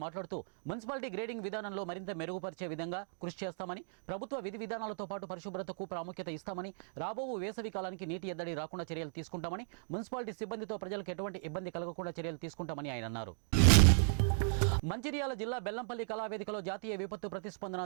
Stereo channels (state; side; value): silent; left; digital silence